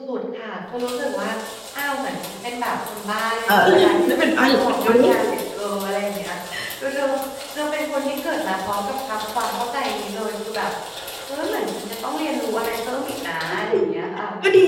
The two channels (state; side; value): identical; both; correlation 1.00